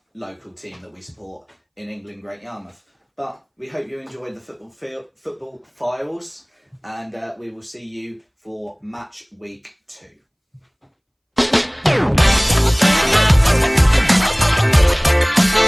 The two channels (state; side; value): identical; both; correlation 1.00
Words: local team that we support in England, Great Yarmouth. But we hope you enjoyed the football files, and we will see you for match week 2.